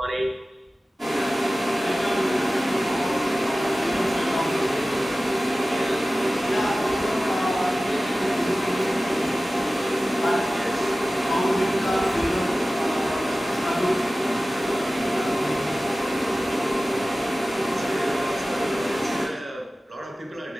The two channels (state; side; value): normal; both; correlation 0.96